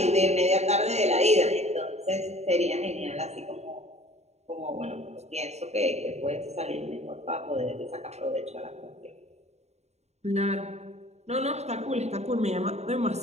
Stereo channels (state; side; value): late; left; 0.32 ms